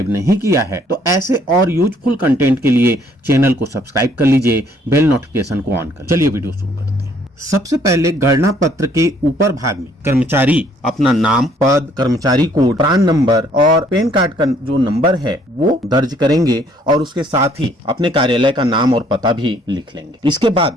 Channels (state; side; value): normal; both; correlation 0.63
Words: नहीं किया है तो ऐसे और यूजफुल कंटेंट के लिए चैनल को सब्सक्राइब कर लीजिए, बेल नोटिफिकेशन को ऑन कर। चलिए वीडियो शुरू करते हैं। सबसे पहले गणना पत्र के ऊपर भाग में कर्मचारी अपना नाम, पद, कर्मचारी कोड, प्रान नंबर और पैन कार्ड का जो नंबर है वो दर्ज करेंगे और उसके साथ ही अपने कार्यालय का नाम और पता भी लिख लेंगे। इसके